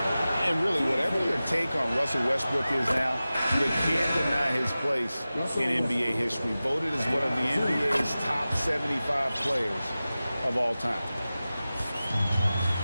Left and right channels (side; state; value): both; inverted; correlation -0.96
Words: And really, whatever your take on Russell Westbrook is now, you can't deny his place in NBA history. Voted as one of the NBA's top 75 players of all time.